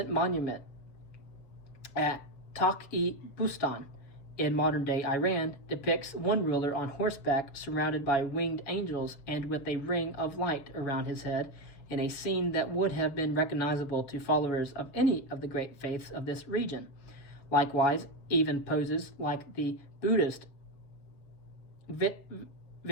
monument at Taq-i-Bustan in modern-day Iran depicts one ruler on horseback surrounded by winged angels and with a ring of light around his head in a scene that would have been recognizable to followers of any of the great faiths of this region. Likewise, even poses like the Buddhist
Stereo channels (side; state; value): right; late; 7.2 ms